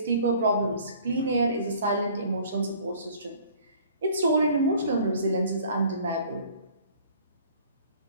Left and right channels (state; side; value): inverted; both; correlation -0.52